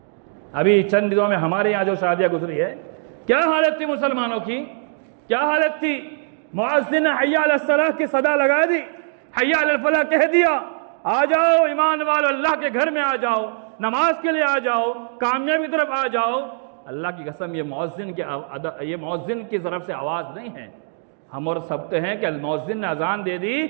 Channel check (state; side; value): silent; left; 65 dB below the other